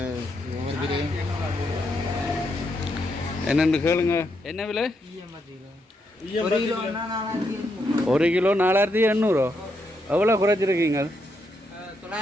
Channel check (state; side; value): normal; both; correlation 0.80